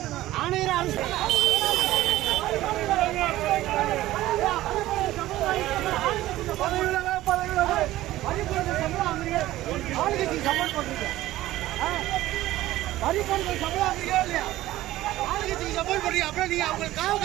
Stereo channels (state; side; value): quieter; left; 15.6 dB